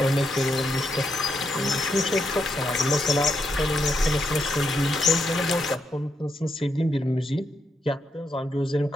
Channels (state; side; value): normal; both; correlation 0.80